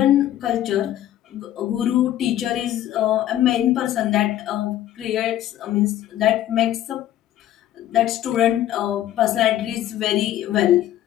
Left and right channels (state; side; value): quieter; right; 12.6 dB